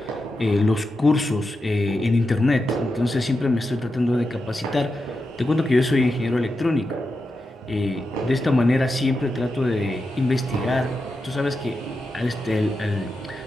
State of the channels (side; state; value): both; normal; correlation 0.88